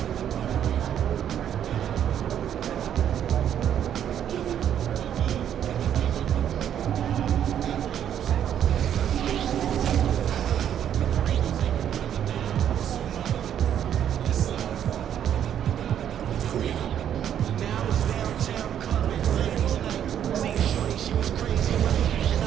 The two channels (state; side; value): quieter; left; 9.8 dB